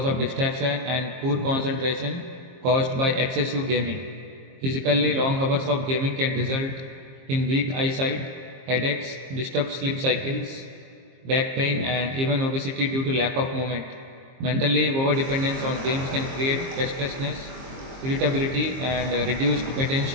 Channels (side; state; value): left; late; 23 ms